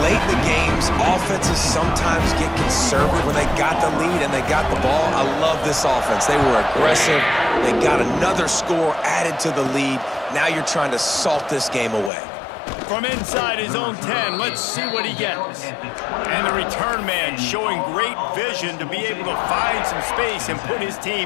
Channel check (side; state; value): right; drops out; at 12.1 s